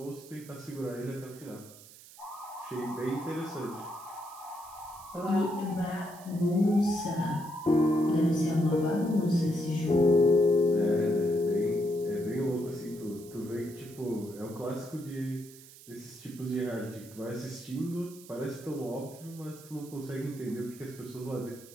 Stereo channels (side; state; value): right; noise; hiss, 20 dB below the sound